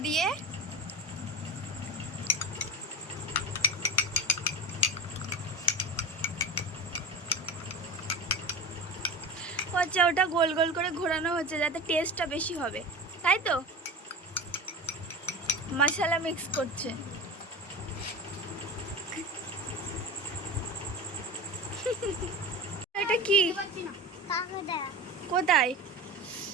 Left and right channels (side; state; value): both; normal; correlation 0.29